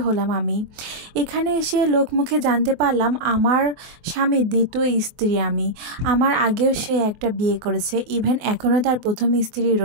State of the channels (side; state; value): left; late; 24 ms